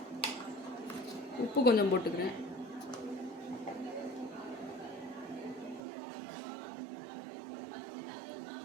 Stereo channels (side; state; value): left; drops out; at 5.8 s